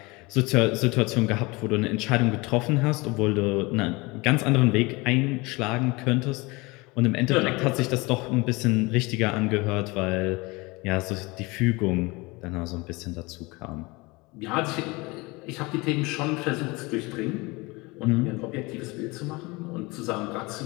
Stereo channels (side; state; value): right; quieter; 24.5 dB